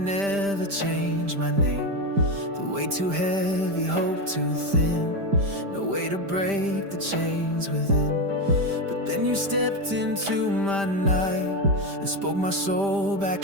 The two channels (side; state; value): left; late; 5.1 ms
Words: change my name. The weight too heavy, hope too thin, no way to break the chains within. But then you stepped into my night and spoke my soul